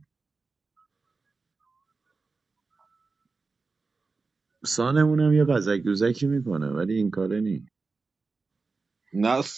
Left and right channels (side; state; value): left; quieter; 4.1 dB